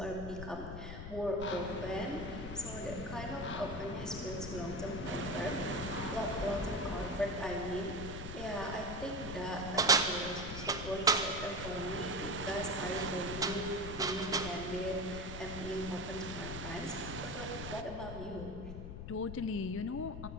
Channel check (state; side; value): noise; left; rumble, 7 dB below the sound